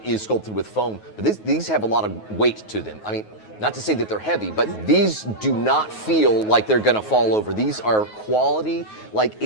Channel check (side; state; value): right; late; 9.4 ms